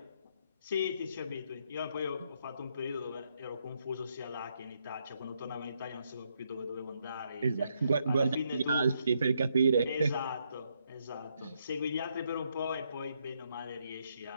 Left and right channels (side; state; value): both; inverted; correlation -0.76